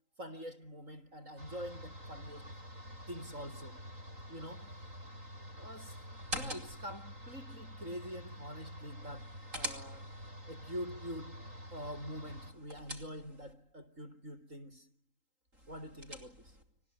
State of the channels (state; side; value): late; left; 3.8 ms